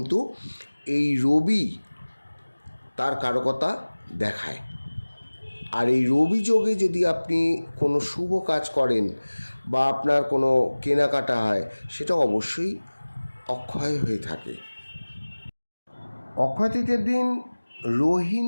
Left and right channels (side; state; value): both; inverted; correlation -1.00